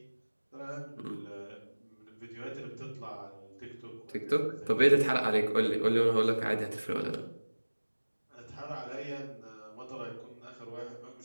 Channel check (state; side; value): inverted; both; correlation -1.00